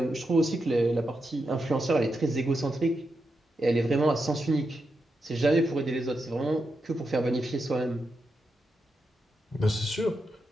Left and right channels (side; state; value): both; normal; correlation 0.86